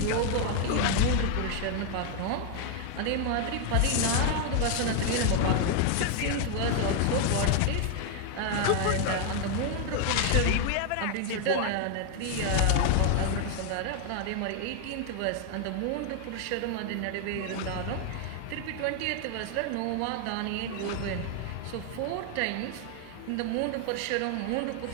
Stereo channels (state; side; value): different; both; correlation 0.00